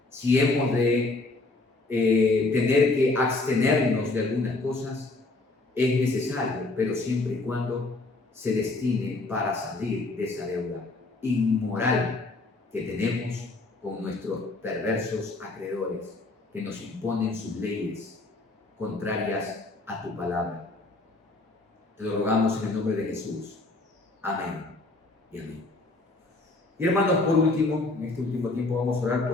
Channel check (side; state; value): right; quieter; 3.2 dB